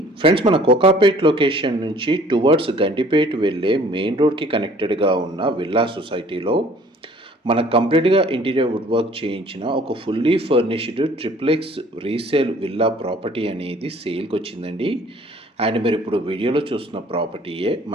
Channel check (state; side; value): normal; both; correlation 0.54